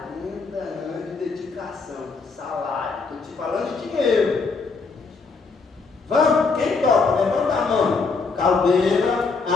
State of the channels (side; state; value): right; quieter; 4.5 dB